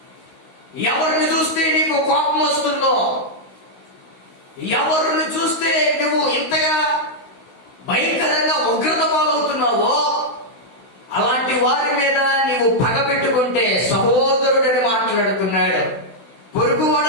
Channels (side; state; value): right; late; 16 ms